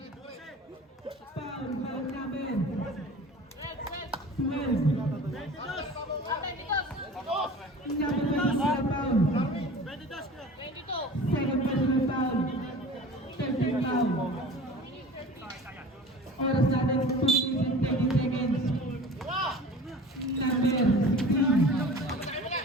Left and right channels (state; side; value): normal; both; correlation 0.40